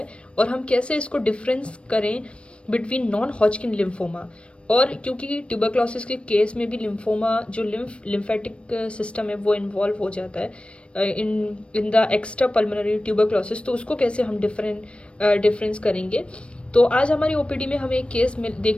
और हम कैसे इसको डिफरेंस करें बिटवीन नॉन हॉजकिन लिम्फोमा। और क्योंकि ट्यूबरक्लोसिस के केस में भी लिम्फोमा जो लिम्फेटिक सिस्टम है वो इन्वॉल्व हो जाता है in in the extra pulmonary tuberculosis, तो उसको कैसे हम डिफरेंस करेंगे। तो आज हमारी ओपीडी में हमें एक केस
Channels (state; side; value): late; right; 0.059 ms